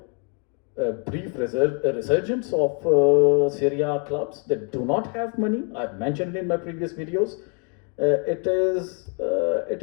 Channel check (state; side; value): quieter; right; 38.7 dB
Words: a brief resurgence of Serie A clubs that do not have money. I've mentioned in my previous videos. It is